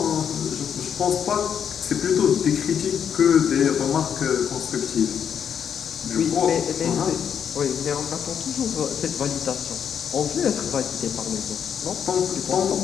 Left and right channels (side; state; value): right; quieter; 8.0 dB